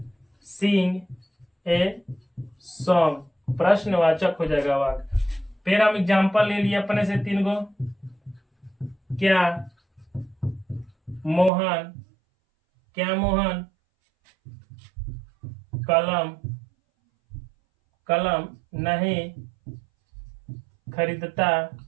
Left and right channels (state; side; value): drops out; left; at 11.5 s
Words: सिंग ए सॉन्ग, प्रश्नवाचक हो जाएगा वाक्य। फिर हम एग्जाम्पल ले लिए अपने से 3 गो, क्या मोहन कलम नहीं खरीदता